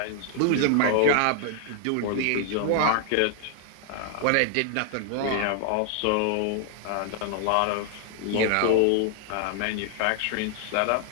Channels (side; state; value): both; different; correlation 0.00